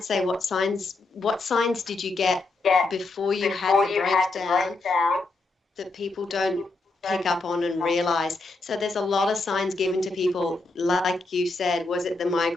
say, what signs did you get before you had the breakdown that people don't pick up on and realize? So there's a lot of signs given to people, like you said. Was it the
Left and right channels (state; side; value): quieter; right; 3.3 dB